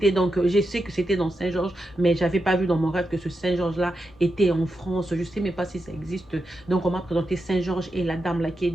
donc, je sais que c'était dans Saint-Georges, mais je n'avais pas vu dans mon rêve que ce Saint-Georges-là était en France. Je ne sais même pas si ça existe. Donc, on m'a présenté Saint-Georges et la dame là qui est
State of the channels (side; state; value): both; normal; correlation 0.87